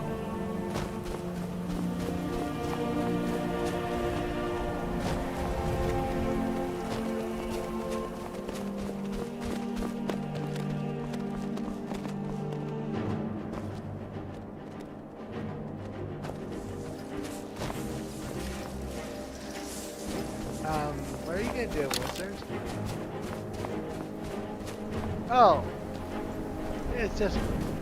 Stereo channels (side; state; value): both; identical; correlation 1.00